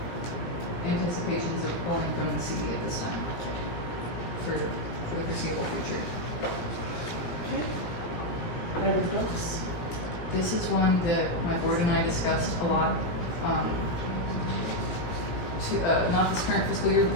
anticipations of pulling from the CD at this time for the foreseeable future. Okay. Private books. This is one that my board and I discussed a lot, not this current fiscal year, but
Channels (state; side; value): late; right; 17 ms